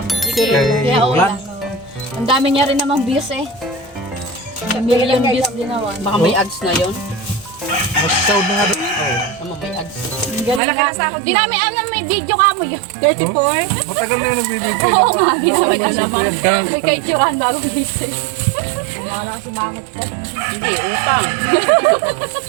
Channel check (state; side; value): drops out; left; at 10.6 s